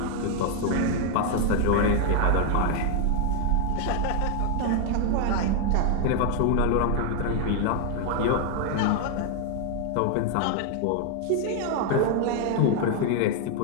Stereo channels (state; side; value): different; both; correlation 0.00